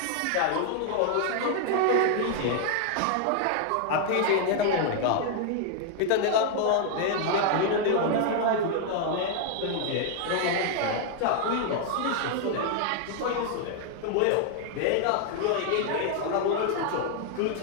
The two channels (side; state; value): both; different; correlation 0.00